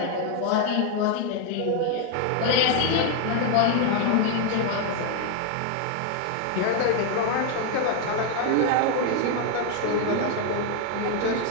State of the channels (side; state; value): both; different; correlation 0.01